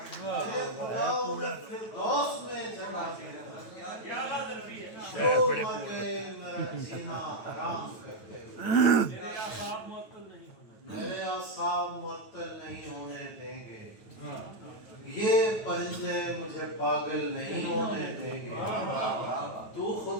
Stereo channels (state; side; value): late; right; 9.0 ms